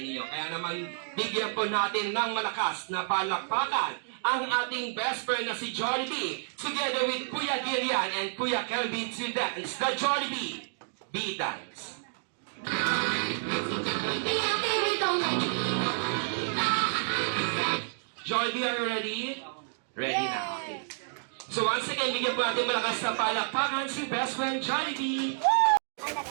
Kaya naman, bigyan po natin ng malakas na palakpakan ang ating best friend na si Jollibee, together with Kuya Gillian and Kuya Kelvin to dance the Jollibee B-Dance. Jollibee, are you ready? Ready na. Okay. So once again, bigyan po natin malakas na palakpakan si best friend Jollibee.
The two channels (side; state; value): left; silent; digital silence